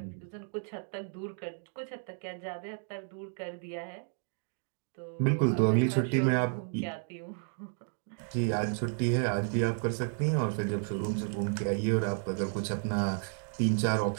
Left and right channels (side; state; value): left; silent; 56 dB below the other